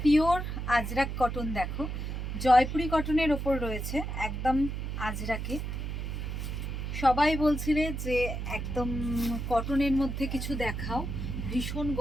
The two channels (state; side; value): noise; right; hum, 4 dB below the sound